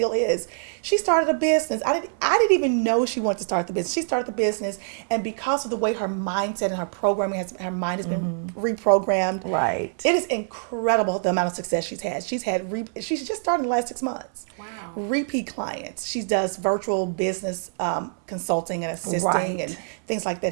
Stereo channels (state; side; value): silent; left; 62 dB below the other